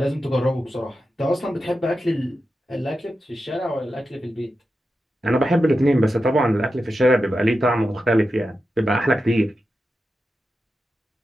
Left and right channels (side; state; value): both; normal; correlation 0.90